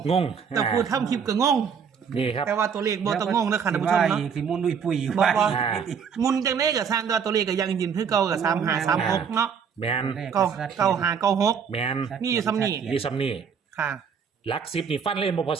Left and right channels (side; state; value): left; quieter; 6.8 dB